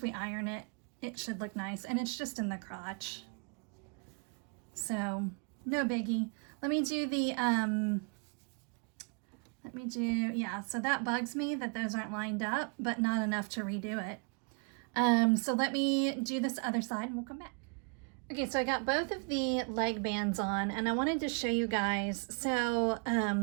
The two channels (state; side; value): quieter; left; 36.6 dB